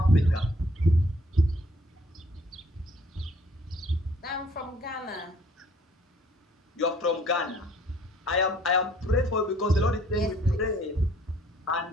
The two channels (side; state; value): both; normal; correlation 0.60